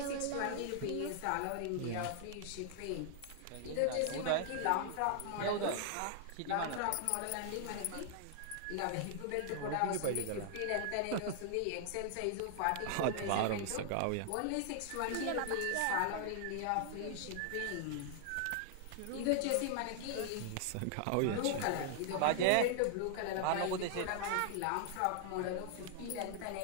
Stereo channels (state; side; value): different; both; correlation -0.01